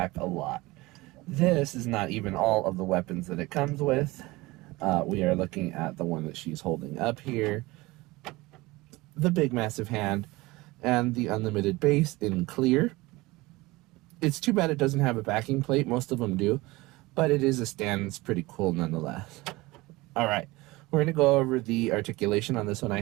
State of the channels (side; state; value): left; quieter; 21.1 dB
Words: a lot. This is not even all of the weapons that it comes with. We are looking at the one that she's holding up here, the big massive hand, and the unlimited base in clear. It's too bad it doesn't have a backing plate. Most of them do, but it is a stand. It's pretty cool nonetheless. All right, we're going to go over the articulation on this one. I